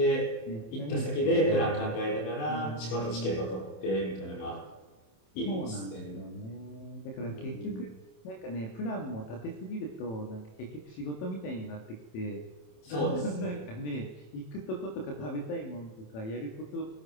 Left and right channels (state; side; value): late; right; 27 ms